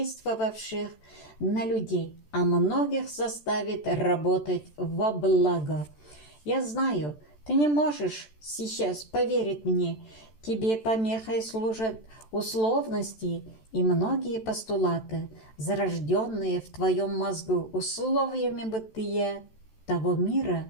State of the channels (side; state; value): right; late; 14 ms